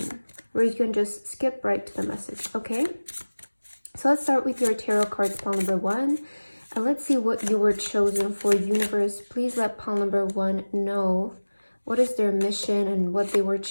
you can just skip right to the message, okay? So let's start with your tarot cards, pile number 1. And let's see what you were chosen for. Universe, please let pile number 1 know what is their mission and what they were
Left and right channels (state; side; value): inverted; both; correlation -1.00